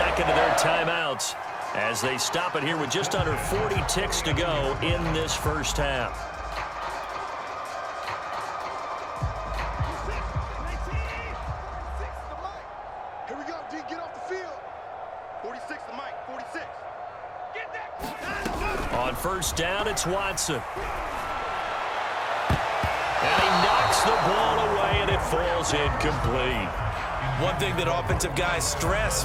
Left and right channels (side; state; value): both; identical; correlation 1.00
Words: of their timeouts as they stop it here with just under 40 ticks to go in this first half. Here we go, D. Get off the field. 46 to Mike. 46. Get that. On first down, it's Watson. And he knocks the ball away, and it falls incomplete. One thing that offensive guys